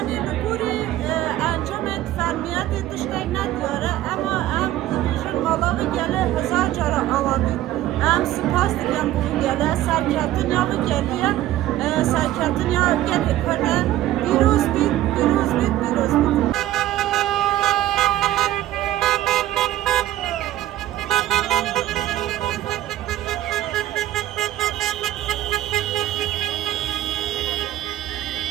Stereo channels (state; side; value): quieter; left; 14.1 dB